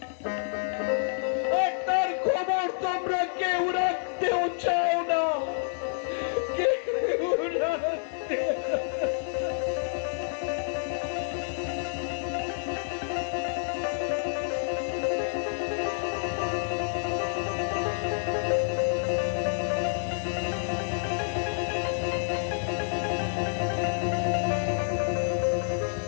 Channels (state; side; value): silent; right; digital silence